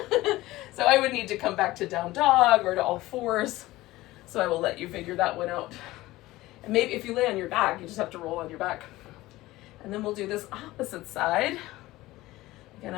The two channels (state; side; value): quieter; right; 17.9 dB